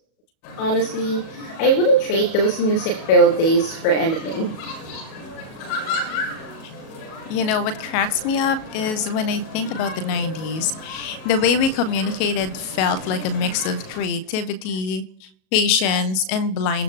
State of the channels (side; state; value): right; late; 37 ms